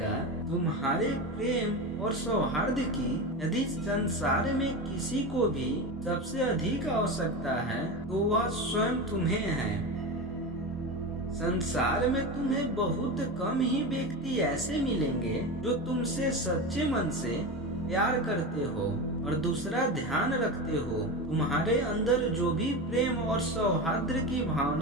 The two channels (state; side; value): normal; both; correlation 0.22